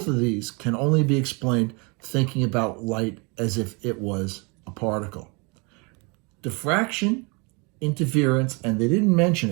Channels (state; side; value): quieter; left; 30.7 dB